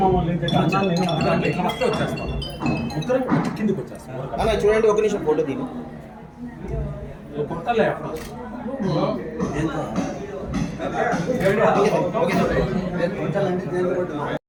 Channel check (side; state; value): both; identical; correlation 1.00